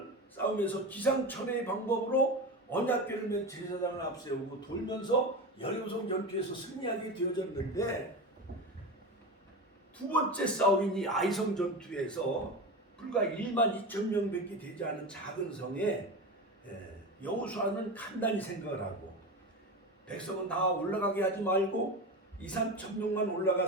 싸우면서 기상천외의 방법으로 언약궤를 맨 제사장을 앞세우고 돌면서 여리고성 전투에서 승리하게 되어졌는데 두 번째 싸움인 이 아이성 전투에서 불과 1만 2천 명밖에 되지 않은 작은 성에 여호수아는 간단히 생각을 하고 백성은 다 올라가게 하지 말고 2, 3천 명만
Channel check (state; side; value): normal; both; correlation 0.24